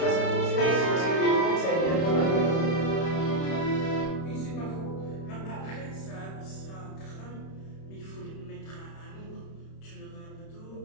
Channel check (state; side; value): late; right; 31 ms